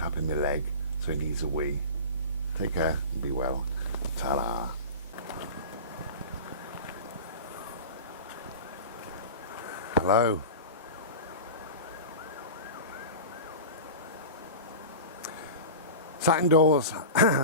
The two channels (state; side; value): inverted; both; correlation -0.31